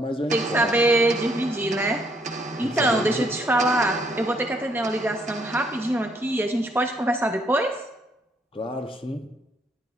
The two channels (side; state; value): both; normal; correlation 0.70